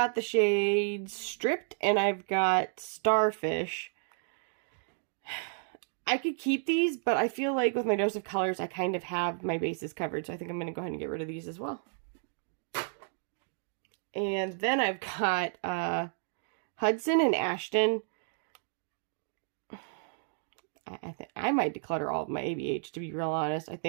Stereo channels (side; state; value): left; silent; digital silence